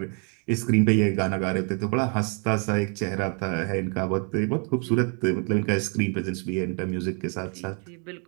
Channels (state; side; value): quieter; left; 38.5 dB